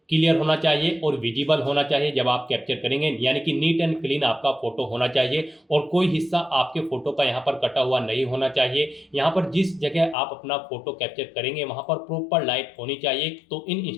क्लियर होना चाहिए और विजिबल होना चाहिए जब आप कैप्चर करेंगे, यानी कि नीट एंड क्लीन आपका फोटो होना चाहिए और कोई हिस्सा आपके फोटो का यहाँ पर कटा हुआ नहीं होना चाहिए। यहाँ पर जिस जगह आप अपना फोटो कैप्चर करेंगे वहाँ पर प्रॉपर लाइट होनी चाहिए। तो इन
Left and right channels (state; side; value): drops out; right; at 10.2 s